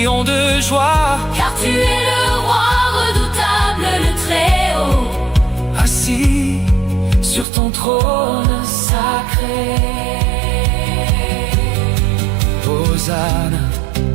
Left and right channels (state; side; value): drops out; left; at 7.5 s